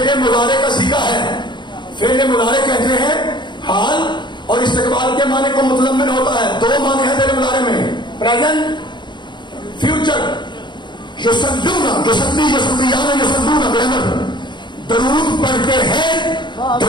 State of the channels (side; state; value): right; late; 0.22 ms